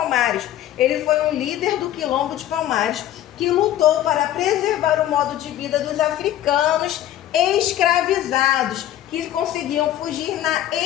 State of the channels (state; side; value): quieter; right; 12.5 dB